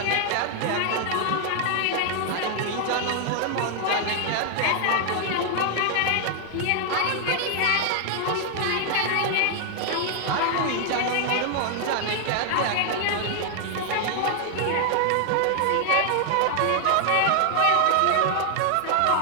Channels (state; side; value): different; both; correlation 0.00